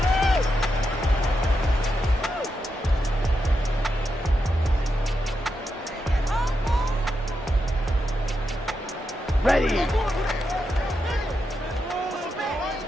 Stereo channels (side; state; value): both; normal; correlation 0.85